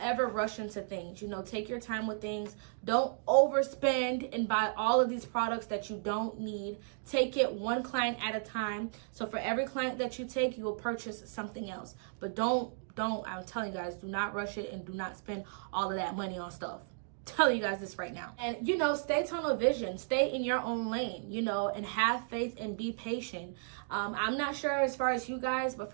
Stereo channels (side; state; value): left; silent; digital silence